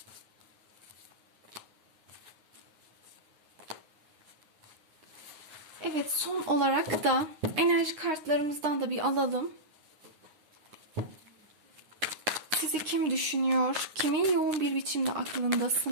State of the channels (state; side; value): late; left; 9.5 ms